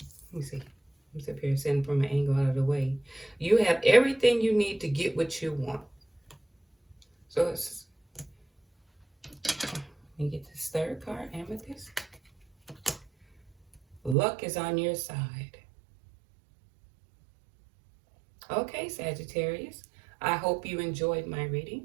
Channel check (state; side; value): drops out; left; at 14.2 s